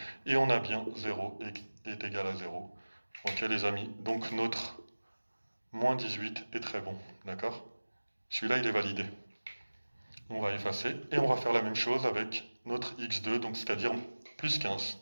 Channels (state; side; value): inverted; both; correlation -1.00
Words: Et on a bien 0 est égal à 0. Ok les amis, donc notre moins 18 est très bon. D'accord? Celui-là, il est validé. On va effacer et on va faire la même chose avec notre x2, donc c'est-à-dire plus 15.